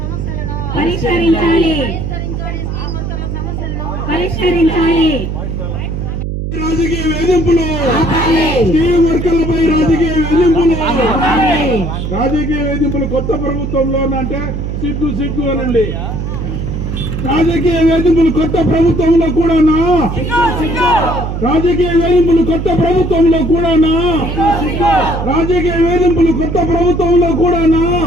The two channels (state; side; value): noise; right; hum, 4 dB below the sound